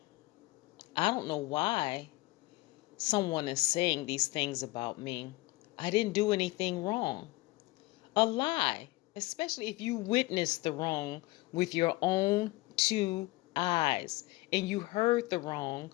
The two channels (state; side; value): quieter; right; 20.9 dB